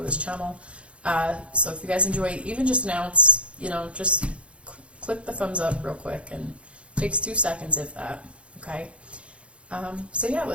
this channel. So if you guys enjoy even just now, it's, just click the thumbs up real quick, and it takes 2 seconds if that, okay? So yeah,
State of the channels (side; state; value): left; late; 0.060 ms